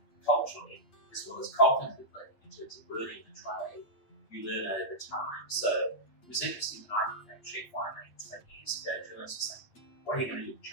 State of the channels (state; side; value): late; right; 8.7 ms